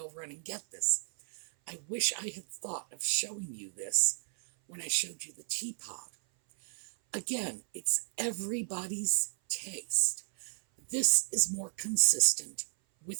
run and get this. I wish I had thought of showing you this when I showed you the teapot. Again, it's everybody's taste. This is more consistent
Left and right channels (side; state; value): left; silent; 56 dB below the other